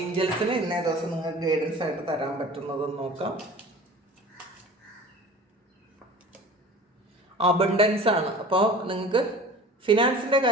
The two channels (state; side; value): normal; both; correlation 0.41